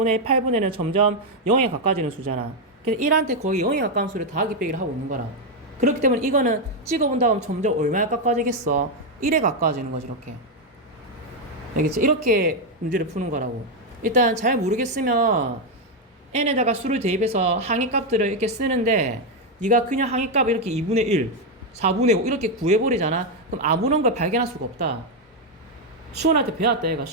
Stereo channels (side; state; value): both; normal; correlation 0.03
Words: 1, 8분의 1은 점점 0에 가까워지는 수잖아. 그래서 1한테 거의 0에 가까운 수를 더하기 빼기를 하고 있는 거라. 그렇기 때문에 이거는 찍어본다 하면 점점 얼마에 가까워지겠어? 1에 가까워지는 거지. 이렇게. 알겠지? 이렇게 문제를 푸는 거라고. 일단 잘 모르겠으면 n에다가 수를 대입해서 항의값들을 이렇게 쓰는데 네가 그냥 항의값 이렇게 2분의 1, 4분의 5 이렇게 구해버리잖아. 그럼 아무런 걸 발견할 수가 없다. 수원한테 배웠다 얘가.